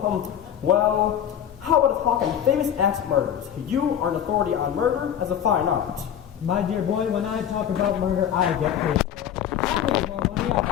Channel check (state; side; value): quieter; right; 9.6 dB